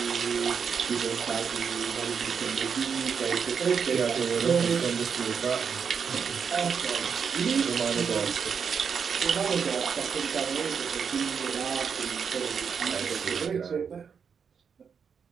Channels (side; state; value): left; quieter; 6.5 dB